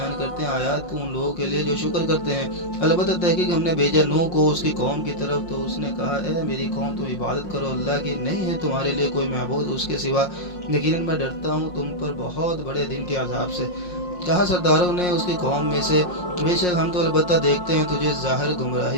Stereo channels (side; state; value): right; late; 5.6 ms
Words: کرتے ہیں آیات کو ان لوگوں کے لیے جو شکر کرتے ہیں۔ البتہ تحقیق ہم نے بھیجا نوح کو اس کی قوم کی طرف، تو اس نے کہا اے میری قوم تم عبادت کرو اللہ کی، نہیں ہے تمہارے لیے کوئی معبود اس کے سوا، یقیناً میں ڈرتا ہوں تم پر بہت بڑے دن کے عذاب سے۔ کہا سرداروں نے اس کی قوم میں سے، بے شک ہم تو البتہ دیکھتے ہیں تجھے ظاہر